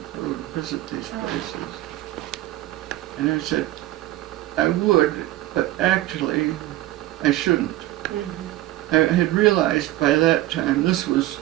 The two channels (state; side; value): quieter; left; 16.0 dB